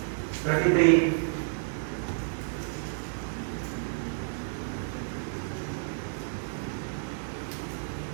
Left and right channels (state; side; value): silent; left; 55 dB below the other